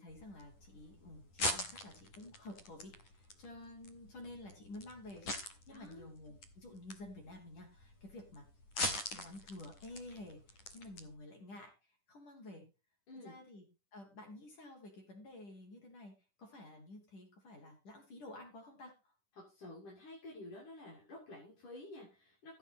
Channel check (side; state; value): right; late; 10 ms